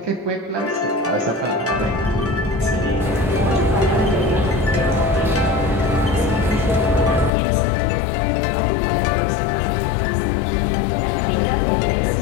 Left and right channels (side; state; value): right; drops out; at 7.3 s